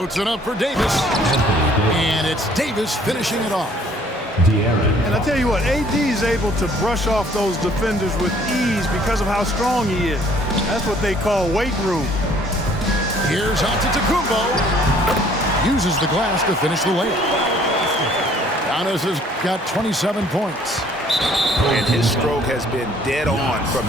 it up for Davis. And it's Davis finishing it off. And I tell you what, AD is able to brush off those defenders with ease because of how strong he is. That's what they call weight room. Here's Antetokounmpo. Uses the glass to finish the layup. Giannis has got 27 points. And his stroke has been dead on from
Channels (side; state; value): both; normal; correlation 0.59